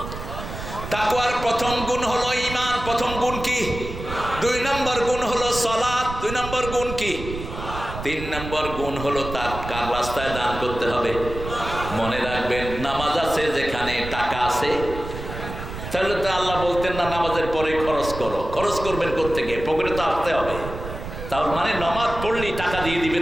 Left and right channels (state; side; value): noise; right; rumble, 9 dB below the sound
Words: তাকওয়ার প্রথম গুণ হলো ঈমান। প্রথম গুণ কি? 2 নম্বর গুণ হলো সালাত। 2 নম্বর গুণ কি? 3 নম্বর গুণ হলো তার কার রাস্তায় দান করতে হবে। মনে রাখবেন, নামাজ আছে যেখানে টাকা আছে, তাহলে তো আল্লাহ বলতেন না নামাজের পরে খরচ করো। খরচ করবেন কোত্থেকে? পকেটে তো আসতে হবে। তার মানে নামাজ পড়লেই টাকা দিয়ে